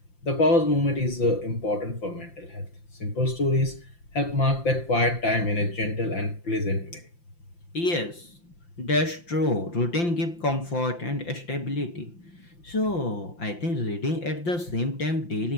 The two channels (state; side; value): late; right; 5.8 ms